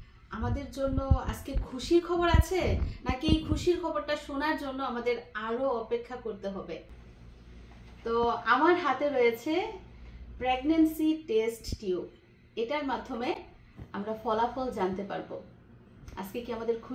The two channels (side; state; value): both; identical; correlation 1.00